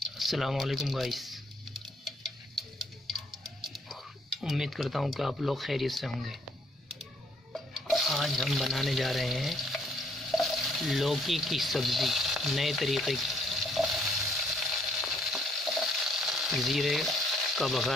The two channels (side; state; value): both; normal; correlation 0.66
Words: अस्सलाम वालेकुम गाइस। उम्मीद करता हूँ कि आप लोग खैरियत से होंगे। आज हम बनाने जा रहे हैं लौकी की सब्ज़ी नए तरीके की। ज़ीरे का